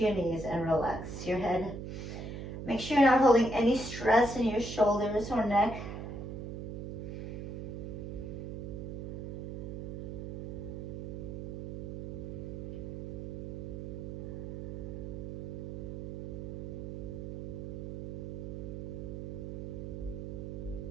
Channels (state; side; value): noise; right; hum, 6 dB below the sound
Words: your knees and relax your head. Make sure you're not holding any stress in your shoulders or neck.